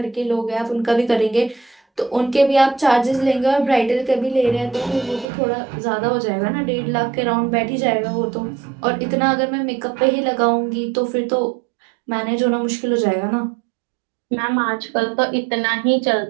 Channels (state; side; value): drops out; left; at 5.2 s